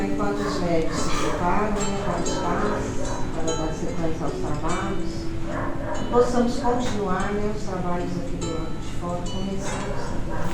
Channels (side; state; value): both; identical; correlation 1.00